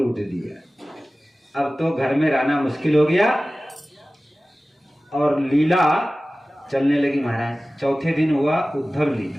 दिया। अब तो घर में रहना मुश्किल हो गया और लीला चलने लगी महाराज। चौथे दिन हुआ उद्धव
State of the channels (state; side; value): normal; both; correlation 0.97